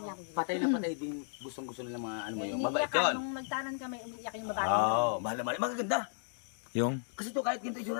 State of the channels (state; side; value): silent; right; digital silence